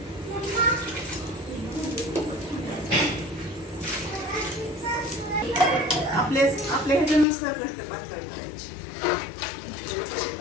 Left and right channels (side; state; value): right; drops out; at 7.2 s